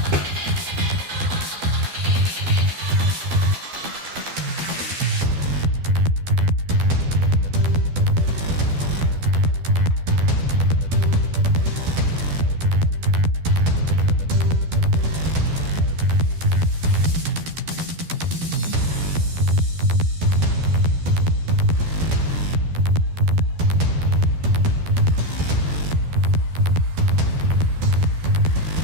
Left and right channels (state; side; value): late; left; 12 ms